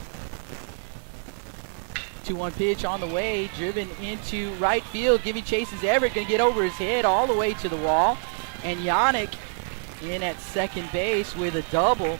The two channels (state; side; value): silent; left; 61 dB below the other